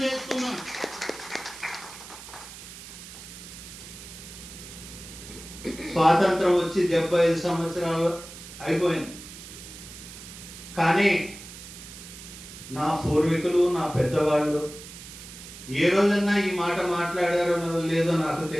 చేస్తున్నాం. స్వాతంత్రం వచ్చి 75 సంవత్సరాలు అయిపోయింది. కానీ నా పూర్వీకులు, నా పెద్దవాళ్ళు ఏ రోజన్నా ఈ మాట మాట్లాడారో లేదో నాకు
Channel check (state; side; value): noise; right; hiss, 14 dB below the sound